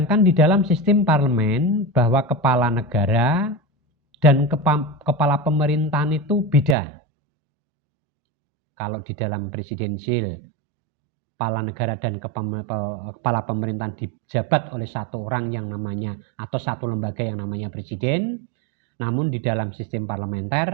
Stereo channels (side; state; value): left; drops out; at 6.8 s